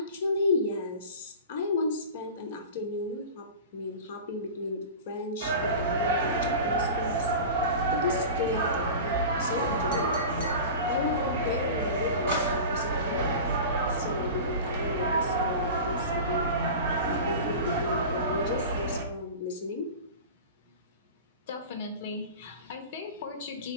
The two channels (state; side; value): inverted; both; correlation -0.33